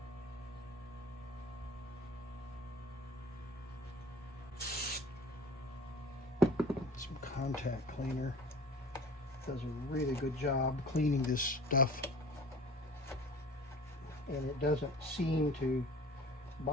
Some contact cleaner does a really good job cleaning this stuff, and it doesn't seem to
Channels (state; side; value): normal; both; correlation 0.43